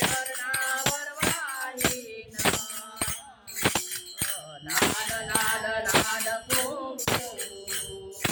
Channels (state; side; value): identical; both; correlation 1.00